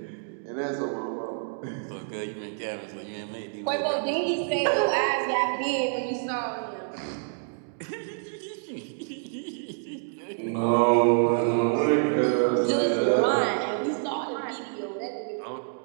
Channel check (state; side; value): silent; left; digital silence